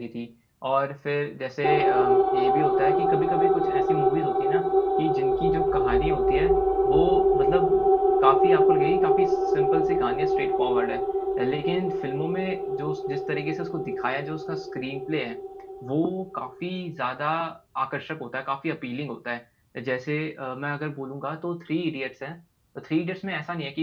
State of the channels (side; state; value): both; identical; correlation 1.00